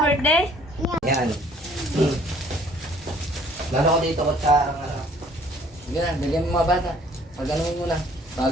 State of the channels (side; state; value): both; normal; correlation 0.58